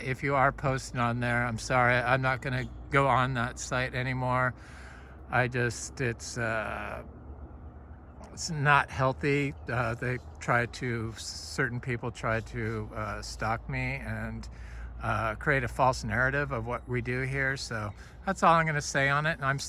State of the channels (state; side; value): identical; both; correlation 1.00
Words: if you are posting on there, I'm sorry, I'm not going to go on that site anymore. It's not healthy. Certain people try to stalk me and create a false narrative of what we do here. So that's all I'm going to say on it. And I'm